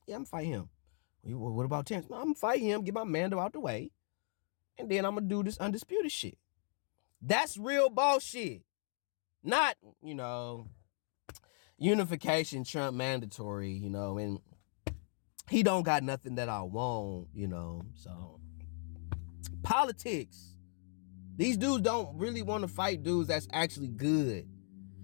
Yeah, I'm going to fight him. What about Terrence? No, I'm going to fight him, get my Mando out the way, and then I'm going to do this undisputed shit. That's real ball shit. Not, unification, Trump mandatory, and he don't got nothing that I want, so. Politics. These dudes don't really want to fight dudes that's actually good.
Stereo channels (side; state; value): right; silent; 53 dB below the other